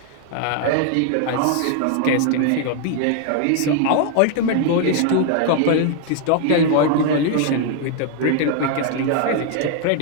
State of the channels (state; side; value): different; both; correlation 0.00